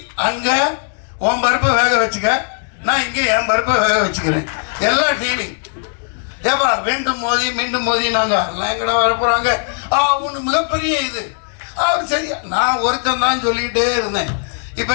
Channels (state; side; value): silent; right; 68 dB below the other